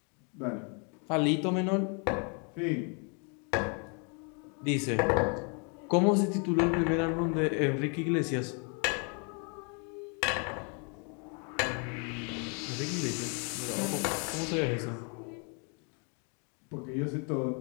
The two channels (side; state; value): right; quieter; 37.0 dB